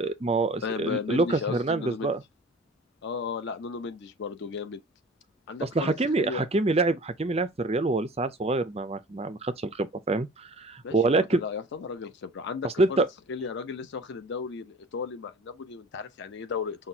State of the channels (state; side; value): normal; both; correlation 0.42